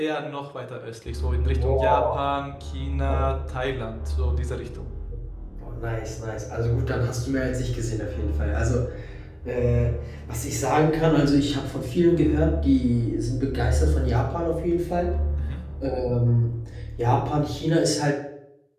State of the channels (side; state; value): both; identical; correlation 1.00